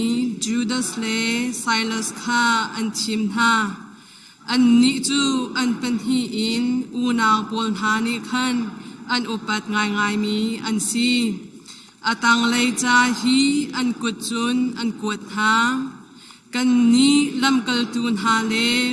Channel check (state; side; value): identical; both; correlation 1.00